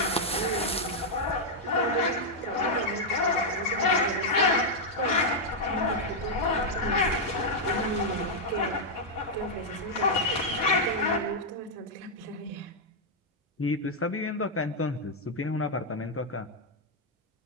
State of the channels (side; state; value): both; normal; correlation -0.03